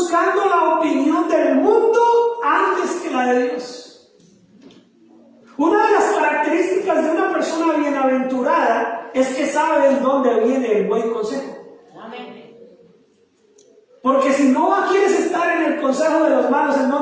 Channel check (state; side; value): identical; both; correlation 1.00